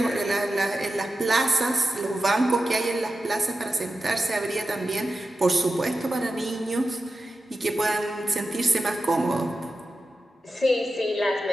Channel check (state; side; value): normal; both; correlation 0.92